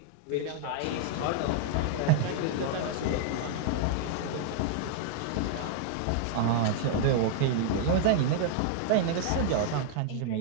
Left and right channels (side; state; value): both; different; correlation -0.01